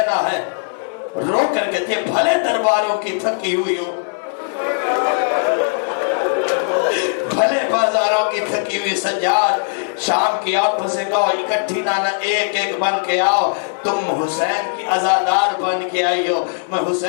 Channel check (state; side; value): silent; right; digital silence